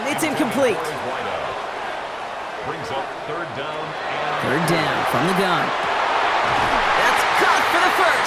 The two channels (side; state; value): both; identical; correlation 1.00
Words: It's incomplete. Brings up 3rd down. 3rd down from the gun. That's caught for the